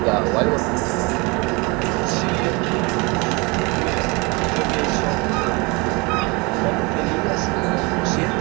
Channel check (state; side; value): quieter; left; 27.2 dB